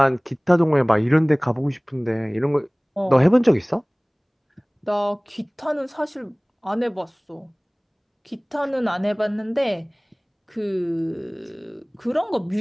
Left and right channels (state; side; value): identical; both; correlation 1.00